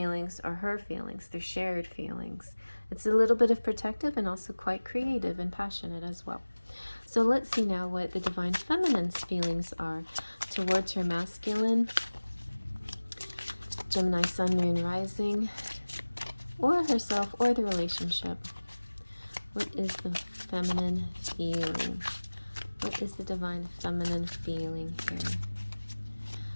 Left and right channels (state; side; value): inverted; both; correlation -1.00